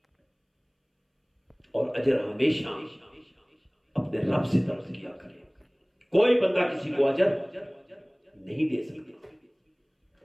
اور اجر ہمیشہ اپنے رب سے طلب کیا کرے۔ کوئی بندہ کسی کو اجر نہیں دے سکتا۔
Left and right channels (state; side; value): identical; both; correlation 1.00